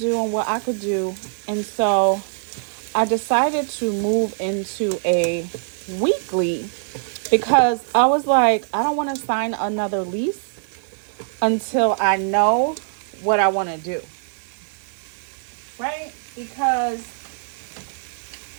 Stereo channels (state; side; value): silent; left; digital silence